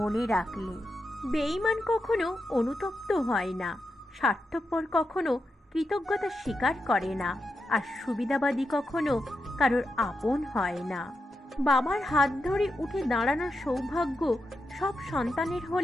রাখলে। বেঈমান কখনো অনুতপ্ত হয় না, স্বার্থপর কখনো কৃতজ্ঞতা স্বীকার করে না, আর সুবিধাবাদী কখনো কারোর আপন হয় না। বাবার হাত ধরে উঠে দাঁড়ানোর সৌভাগ্য সব সন্তানের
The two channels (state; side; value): normal; both; correlation 0.87